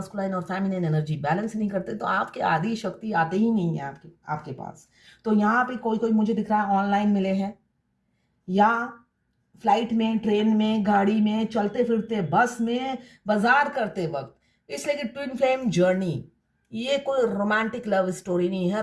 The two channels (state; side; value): identical; both; correlation 1.00